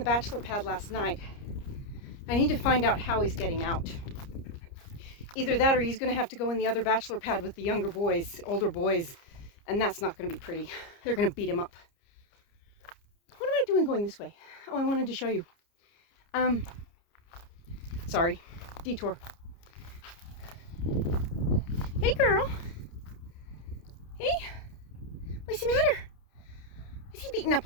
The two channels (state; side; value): late; right; 30 ms